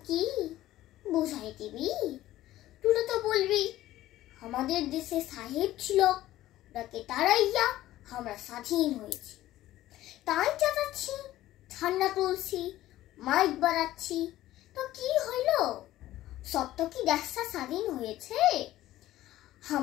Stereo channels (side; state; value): right; quieter; 14.8 dB